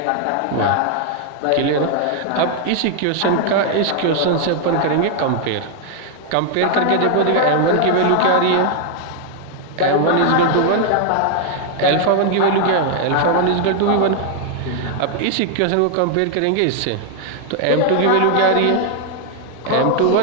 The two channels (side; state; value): both; different; correlation 0.00